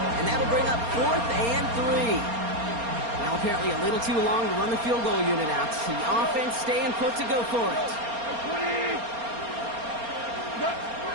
And that'll bring up 4th and 3. Now apparently a little too long to run the field goal unit out. The offense staying put to go for it.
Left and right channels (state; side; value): late; left; 4.3 ms